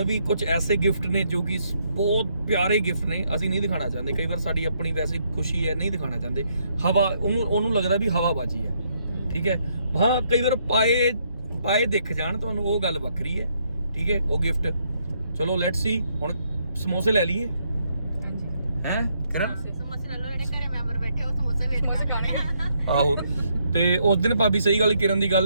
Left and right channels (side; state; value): both; inverted; correlation -0.73